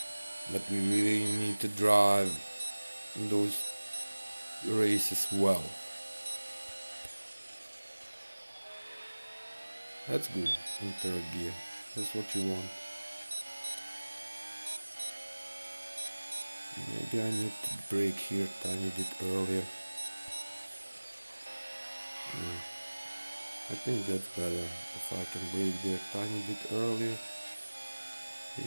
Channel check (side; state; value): both; inverted; correlation -1.00